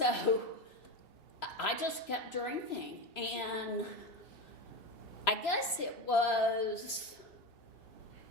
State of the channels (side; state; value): right; late; 3.0 ms